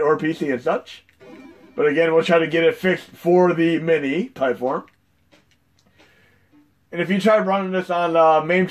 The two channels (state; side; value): identical; both; correlation 1.00